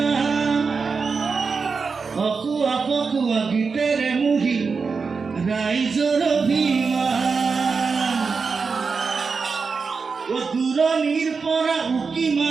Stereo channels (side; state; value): left; quieter; 5.0 dB